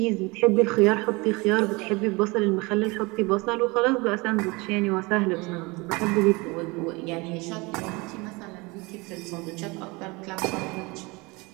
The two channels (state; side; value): quieter; left; 25.4 dB